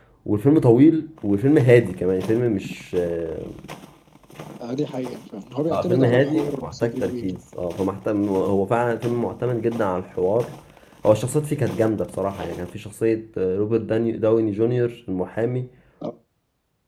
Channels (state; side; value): identical; both; correlation 1.00